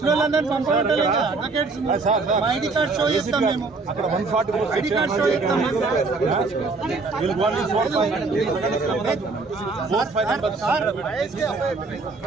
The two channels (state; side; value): quieter; left; 3.9 dB